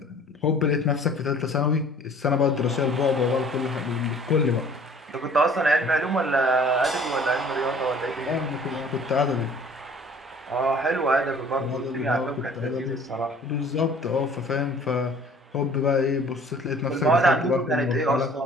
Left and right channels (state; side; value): normal; both; correlation 0.51